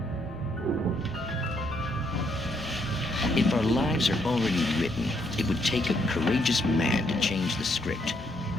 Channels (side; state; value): both; normal; correlation 0.73